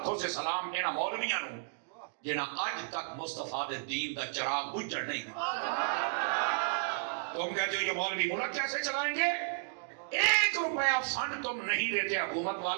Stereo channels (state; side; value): silent; left; digital silence